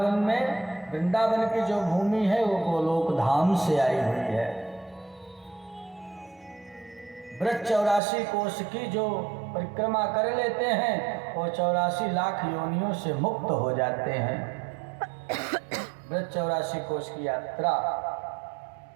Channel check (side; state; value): left; drops out; at 8.0 s